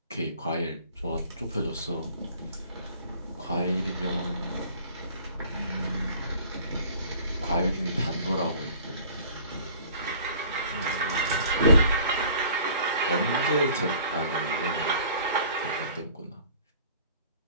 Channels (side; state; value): both; inverted; correlation -0.50